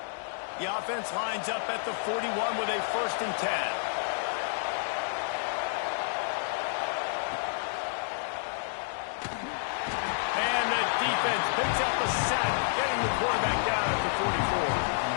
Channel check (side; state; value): right; silent; digital silence